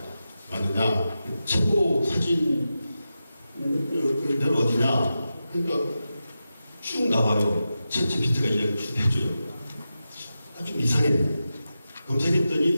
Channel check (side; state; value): both; inverted; correlation -0.91